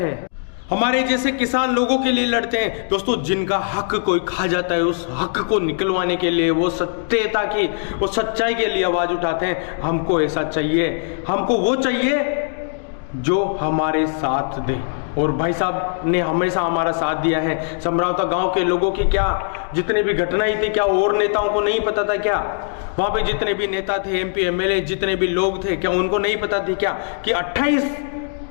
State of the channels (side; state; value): right; silent; digital silence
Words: हमारे जैसे किसान लोगों के लिए लड़ते हैं दोस्तों, जिनका हक कोई खा जाता है उस हक को निकलवाने के लिए, वो सत्यता की, वो सच्चाई के लिए आवाज उठाते हैं। हमको ऐसा चाहिए, हमको वो चाहिए जो हमारे साथ दे। और भाई साहब ने हमेशा हमारा साथ दिया है। समरावता गांव के लोगों की क्या जितनी भी घटनाएं थी, क्या और नेताओं को नहीं पता था क्या? वहां पे जितने भी नेता थे, MP MLA जितने भी लोग थे, क्या उनको नहीं पता थी क्या कि 28